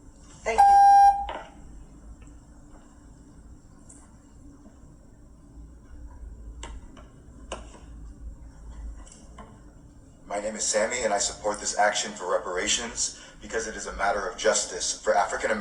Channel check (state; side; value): identical; both; correlation 1.00